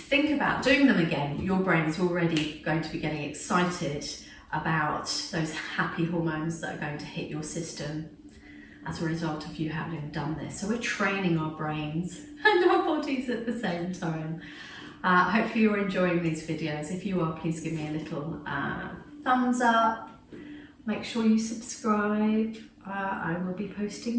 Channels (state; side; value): identical; both; correlation 1.00